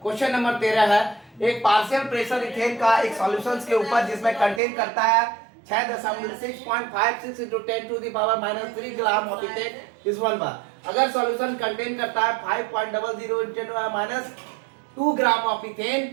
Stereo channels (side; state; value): left; drops out; at 4.6 s